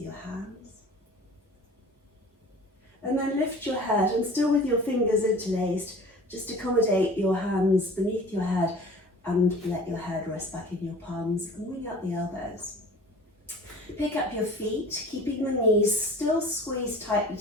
your hands. And then lift your head, and still with your fingers interlaced, just accommodate your hands beneath your head and let your head rest back in your palms and wing out the elbows. Pick up your feet, keeping the knees still squeezed tightly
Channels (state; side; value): normal; both; correlation 0.43